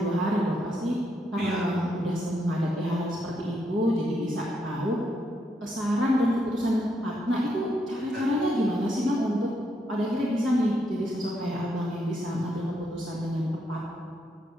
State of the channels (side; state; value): both; normal; correlation 0.78